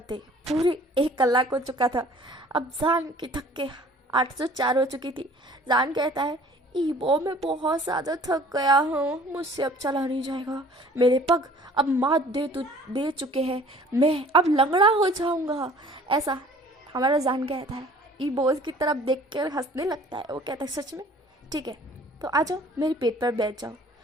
पूरे 1 कलाक हो चुका था। अब जान की थक के 804 हो चुकी थी। जान कहता है, इबो मैं बहुत ज़्यादा थक गया हूँ, मुझसे अब चला नहीं जाएगा, मेरे पग अब मात दे चुके हैं, मैं अब लंगड़ा हो जाऊँगा ऐसा हमारा जान कहता है। इबो उसकी तरफ देख कर हंसने लगता है। वो कहता है, सच में? ठीक है तो आ जाओ मेरे पेट पर बैठ जाओ,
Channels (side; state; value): both; normal; correlation 0.51